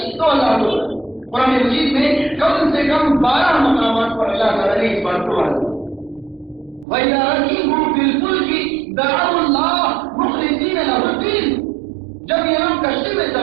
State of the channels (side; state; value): left; drops out; at 6.9 s